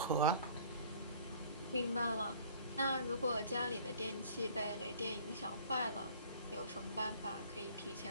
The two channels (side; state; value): both; inverted; correlation -0.52